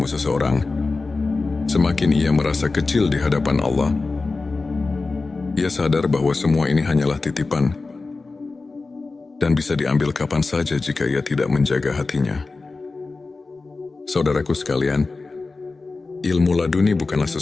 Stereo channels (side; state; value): right; quieter; 3.8 dB